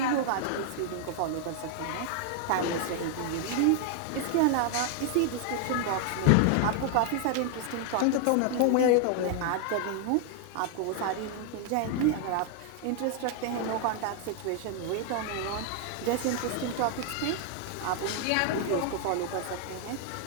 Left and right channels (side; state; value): both; different; correlation 0.00